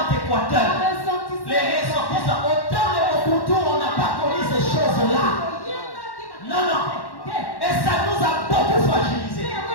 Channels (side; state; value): right; late; 1.1 ms